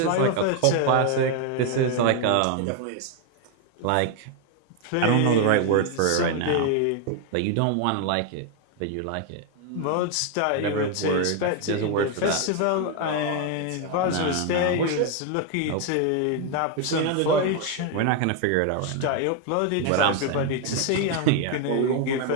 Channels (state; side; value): different; both; correlation 0.01